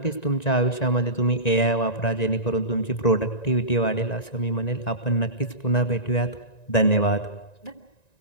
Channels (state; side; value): late; right; 1.9 ms